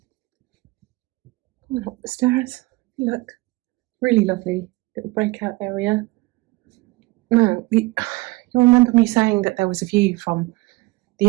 Up the stairs, look, really lovely little breakout area. Now, you'll remember me saying that there was a view from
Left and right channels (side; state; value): left; quieter; 22.0 dB